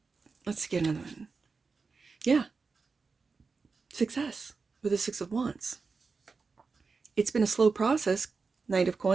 let's get another one. Yeah. Success with the Six of Wands. It's been a slow process. Knight of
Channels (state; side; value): quieter; left; 4.6 dB